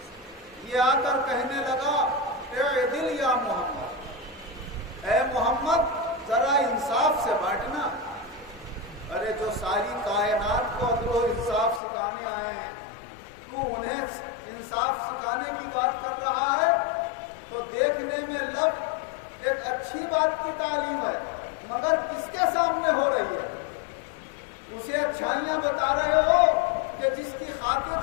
یہ آ کر کہنے لگا اعدل یا محمد، اے محمد ذرا انصاف سے بانٹنا۔ ارے جو ساری کائنات کو عدل و انصاف سکھانے آئے ہیں، تو انہیں انصاف سکھانے کی بات کر رہا ہے؟ تو دیکھنے میں لب ایک اچھی بات کی تعلیم ہے، مگر کس کے سامنے ہو رہی ہے؟ اسے اچھائیاں بتا رہے ہو کہ جس کی خاطر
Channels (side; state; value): right; drops out; at 11.8 s